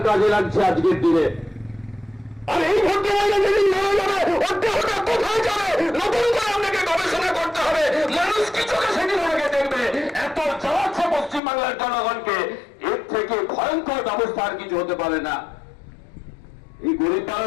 কাজে লাগছে আজকের দিনে। আর এই ভদ্রমহিলা যেদিন মারা যাবে, ওর দেহটা কোথায় যাবে? নতুন করে আপনাকে গবেষণা করতে হবে, মানুষ কি চোখে সেদিন ওনাকে দেখবে। এত চালাচ্ছে পশ্চিমবাংলার জনগণকে, এর থেকে ভয়ঙ্কর ব্যবস্থা আর কিছু হতে পারে না। এই গরিব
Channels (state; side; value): drops out; right; at 11.4 s